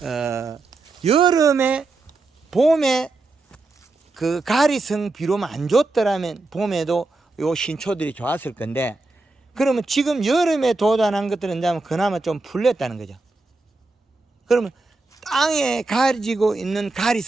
여름에 봄에 그 가리성 비료만 안 줬더라면 봄에도 요 신초들이 좋았을 건데 그러면 지금 여름에 도달한 것들은 그나마 좀 풀렸다는 거죠. 그러면 땅에 가지고 있는 가리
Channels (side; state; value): left; quieter; 3.3 dB